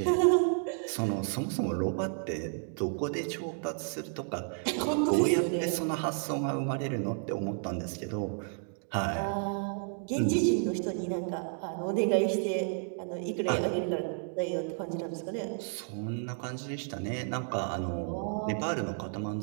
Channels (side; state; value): left; silent; 57 dB below the other